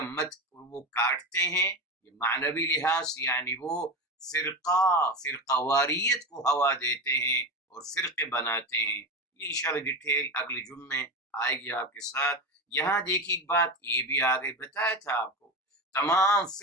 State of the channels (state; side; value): normal; both; correlation 0.22